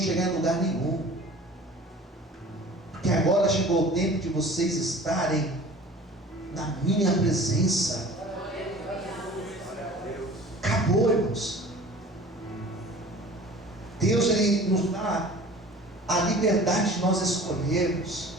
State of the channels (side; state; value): both; normal; correlation 0.44